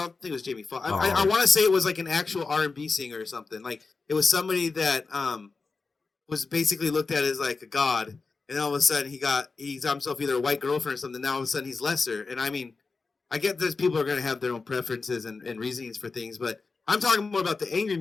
think it was Jamie Foxx. I Oh, want to say it was like an actual R&B singer or something. Like it was somebody that was basically looked at as like a god, and all of a sudden he's got himself either a white girlfriend or something. Now all of a sudden he's lesser, and I mean I get that people are going to have their own preferences and reasonings for things, but I'm talking more about the angry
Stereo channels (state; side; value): quieter; right; 4.3 dB